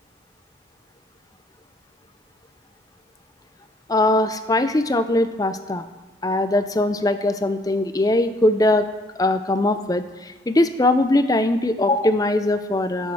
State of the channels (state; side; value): normal; both; correlation 0.64